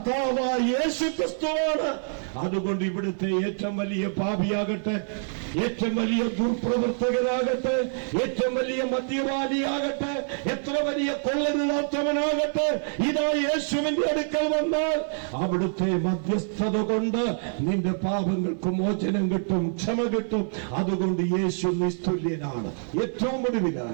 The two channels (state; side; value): silent; left; 55 dB below the other